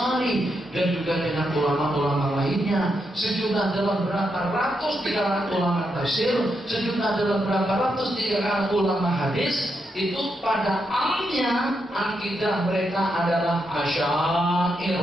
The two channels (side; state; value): both; normal; correlation 0.82